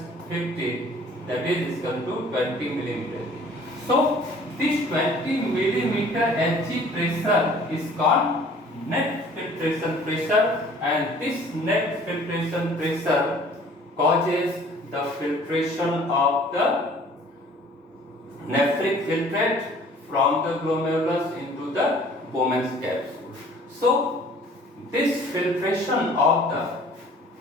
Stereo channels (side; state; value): both; normal; correlation 0.52